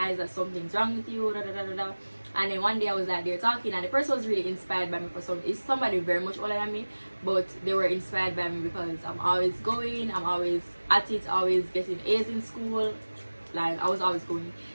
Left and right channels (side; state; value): both; inverted; correlation -1.00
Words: that something's wrong with you, da, da, da, da, da. And then one day I was like, they're talking, and the person was really inspired by me for some. It's somebody very much older than me, but they were inspired by me because I'm always going, I'm always at it, always getting A's in school. Like I was always going.